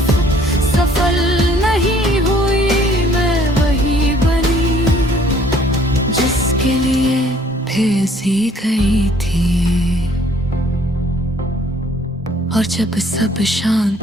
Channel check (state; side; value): normal; both; correlation 0.59